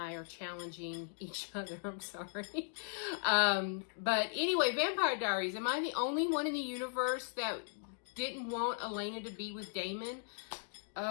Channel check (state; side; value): silent; right; digital silence